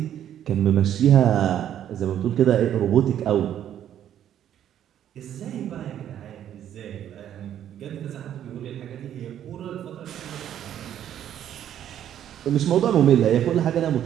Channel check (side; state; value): left; quieter; 10.5 dB